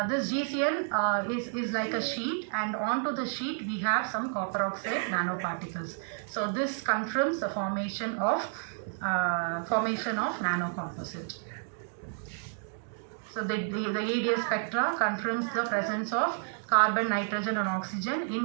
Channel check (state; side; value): silent; left; digital silence